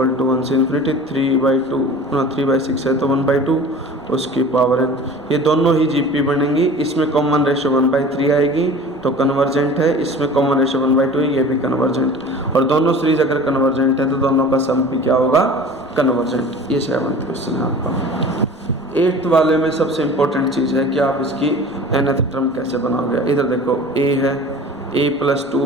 to 1 से इन्फिनिटी 3/6 है तो 1/2 उसकी पावर n। ये दोनों ही जीपी बनेंगी, इसमें कॉमन रेशो 1/3 आएगी तो कन्वर्जेंट है, इसमें कॉमन रेशो 1/2 है, ये भी कन्वर्जेंट। और दोनों सीरीज अगर कन्वर्जेंट है तो दोनों का सम भी क्या होगा, कन्वर्जेंट। ये 7th क्वेश्चन है आपका। 8th वाले में सबसे इम्पोर्टेंट चीज़ है कि आप इसकी nth टर्म कैसे बनाओगे। इधर देखो a है, a प्लस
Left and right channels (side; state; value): left; noise; rumble, 29 dB below the sound